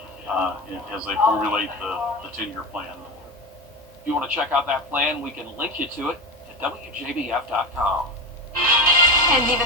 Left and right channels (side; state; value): both; normal; correlation 0.22